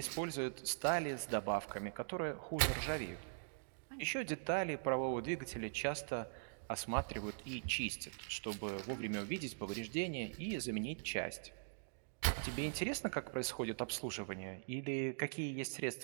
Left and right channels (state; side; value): silent; left; digital silence